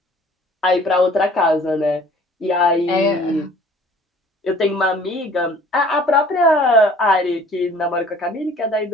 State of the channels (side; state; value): both; normal; correlation 0.52